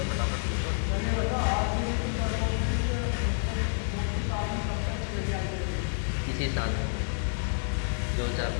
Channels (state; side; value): silent; right; digital silence